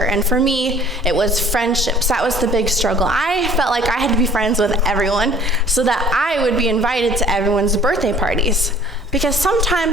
and for me, it was friendships. That was the big struggle. I felt like I had to be friends with everyone so that I would be invited to everyone's birthday parties. Because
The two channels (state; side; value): normal; both; correlation 0.52